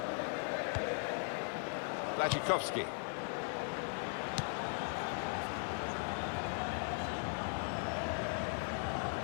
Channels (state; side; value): silent; right; 52 dB below the other